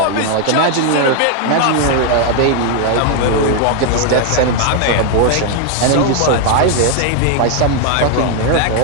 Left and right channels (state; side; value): different; both; correlation 0.00